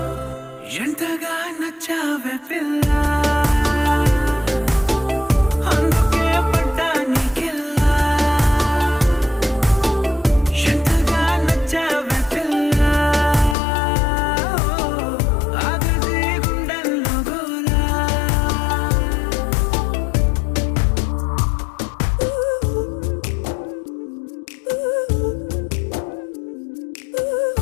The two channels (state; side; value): drops out; right; at 13.6 s